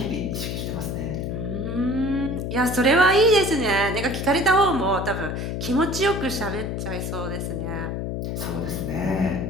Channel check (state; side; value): noise; left; hum, 3 dB below the sound